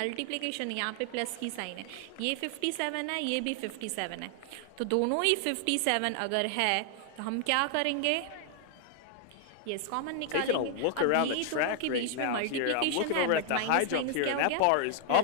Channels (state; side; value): different; both; correlation 0.00